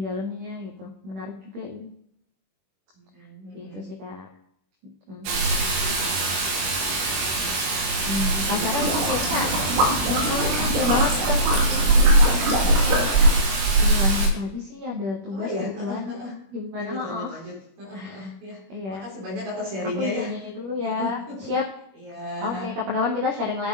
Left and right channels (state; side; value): late; left; 21 ms